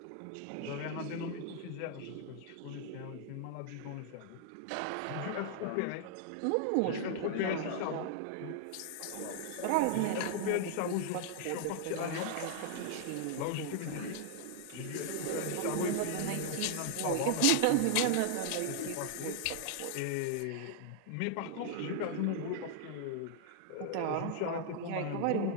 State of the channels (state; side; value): different; both; correlation 0.00